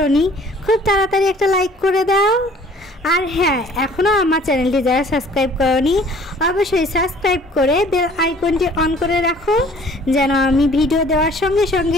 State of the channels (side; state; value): both; normal; correlation 0.53